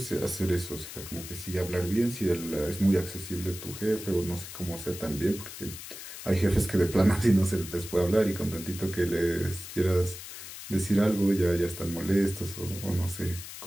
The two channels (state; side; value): noise; left; hiss, 11 dB below the sound